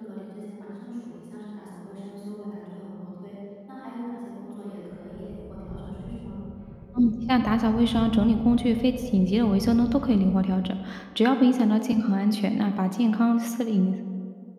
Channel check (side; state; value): both; identical; correlation 1.00